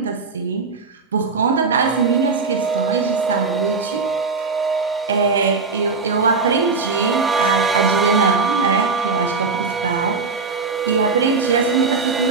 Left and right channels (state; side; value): quieter; left; 4.6 dB